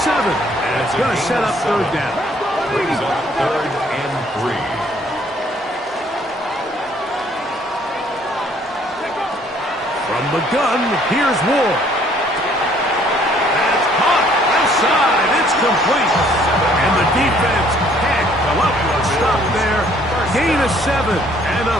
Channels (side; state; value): both; normal; correlation 0.61